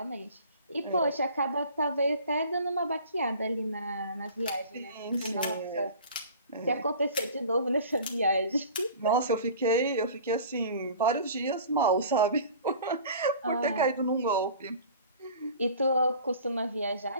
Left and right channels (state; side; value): inverted; both; correlation -0.44